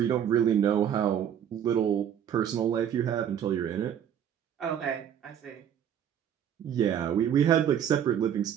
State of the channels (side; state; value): left; quieter; 9.3 dB